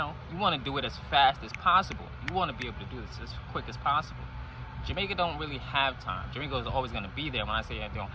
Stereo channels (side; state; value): both; identical; correlation 1.00